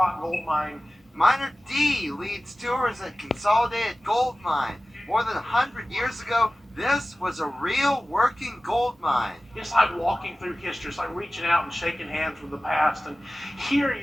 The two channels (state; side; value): normal; both; correlation 0.96